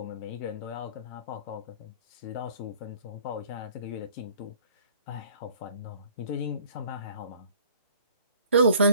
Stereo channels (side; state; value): both; inverted; correlation -0.54